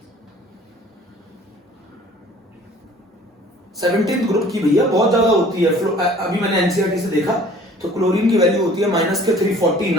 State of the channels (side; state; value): both; normal; correlation 0.51